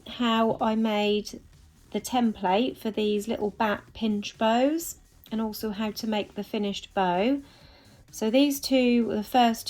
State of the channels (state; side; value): identical; both; correlation 1.00